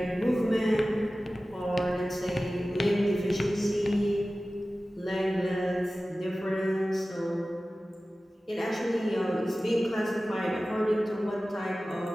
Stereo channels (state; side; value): normal; both; correlation 0.96